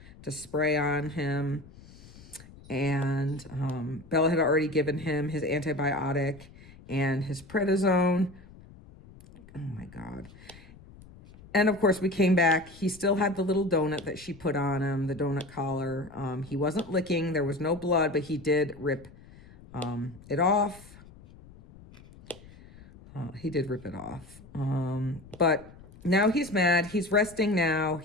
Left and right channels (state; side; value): noise; left; rumble, 21 dB below the sound